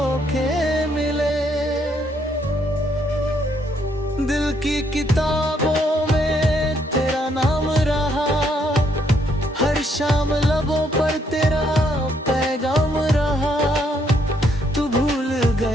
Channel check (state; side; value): normal; both; correlation 0.71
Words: मिले। दिल की किताबों में तेरा नाम रहा, हर शाम लबों पर तेरा पैगाम रहा। तू भूल